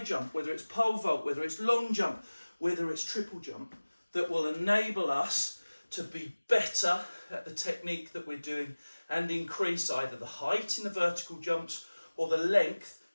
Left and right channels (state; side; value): inverted; both; correlation -1.00